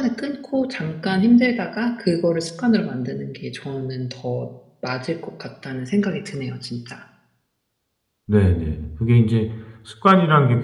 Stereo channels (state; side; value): identical; both; correlation 1.00